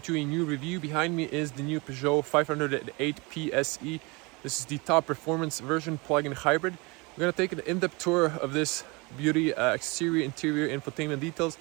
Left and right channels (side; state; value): left; quieter; 27.0 dB